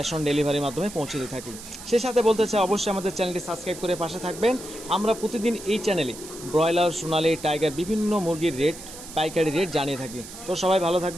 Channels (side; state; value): right; noise; hiss, 14 dB below the sound